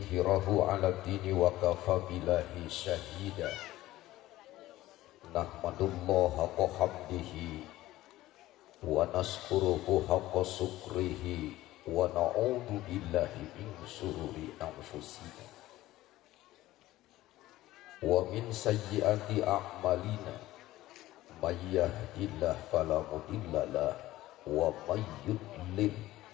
'ala dini wa kafa billahi syahida. Nahmadullaha haqqa hamdihi wa naskuruhu haqqa sukrihi wa na'udzu billahi min syururi anfusina wa min sayyiati a'malina may yahdihillahu fala mudhillalah wa may yudlil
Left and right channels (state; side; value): quieter; right; 16.2 dB